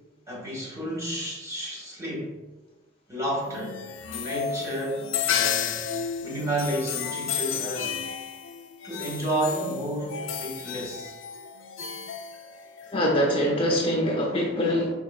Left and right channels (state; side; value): normal; both; correlation 0.24